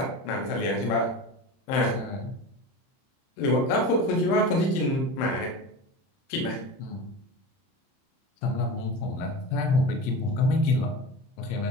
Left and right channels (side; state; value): right; late; 31 ms